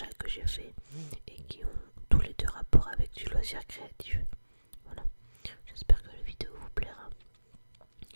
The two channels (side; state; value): both; inverted; correlation -1.00